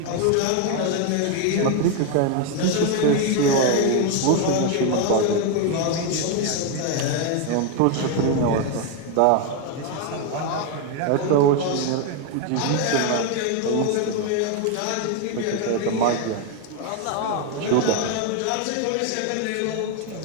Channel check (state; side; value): different; both; correlation 0.01